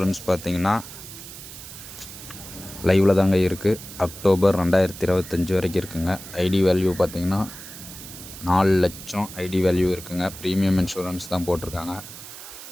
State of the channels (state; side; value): noise; right; hiss, 14 dB below the sound